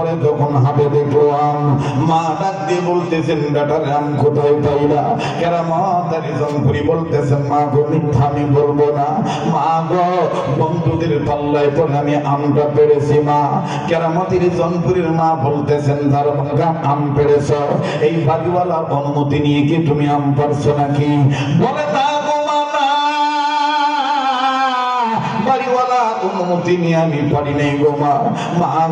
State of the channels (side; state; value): both; identical; correlation 1.00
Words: যখন হাতে দেখলো আম, মা ডাক দিয়ে বলতেছেন, বেটার আম কোথায় পাইলা? কেরামতের জনপুরি বলতেছেন, মা গো, মিথ্যা আমি বলবো না, মা গো, বন্ধুদের পাল্লায় পরে আমি আমটা পেরেছি মা। কেরামতের জনপুরীর মা বলতেছেন, তার আম পেরেছ, এই বাড়িওয়ালার অনুমতি নিয়ে কি তুমি আম পারছো নাকি? বলে, তা বাড়িওয়ালার অনুমতি নিয়ে আমি পারি নাই গো মা। মা